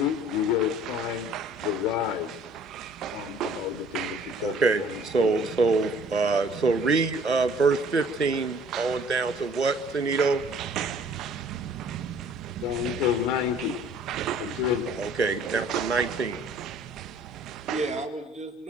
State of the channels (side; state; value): both; normal; correlation 0.54